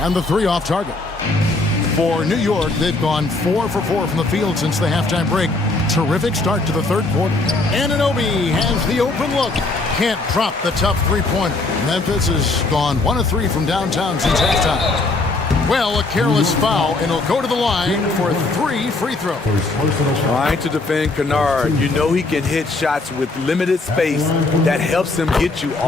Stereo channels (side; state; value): right; quieter; 3.3 dB